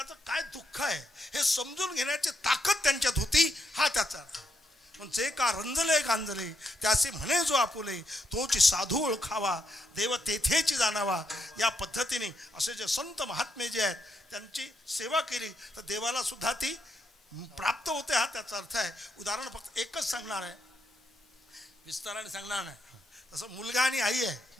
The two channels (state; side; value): normal; both; correlation 0.79